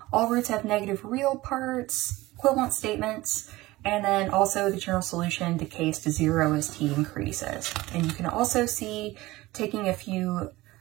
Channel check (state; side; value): quieter; left; 19.1 dB